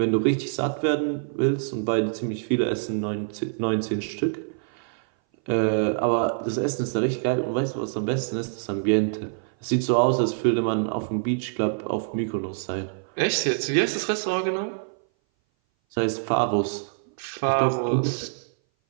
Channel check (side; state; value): left; silent; 59 dB below the other